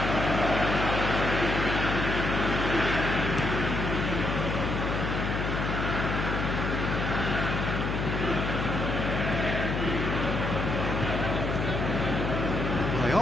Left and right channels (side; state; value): left; noise; hum, 1 dB below the sound